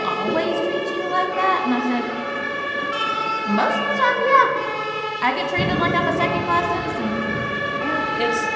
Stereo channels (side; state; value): both; identical; correlation 1.00